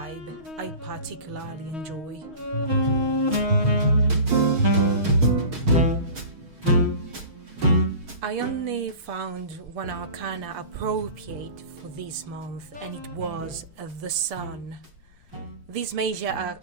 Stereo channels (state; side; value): late; left; 6.4 ms